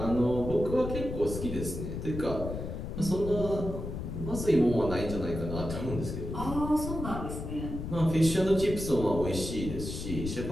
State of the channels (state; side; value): noise; left; rumble, 6 dB below the sound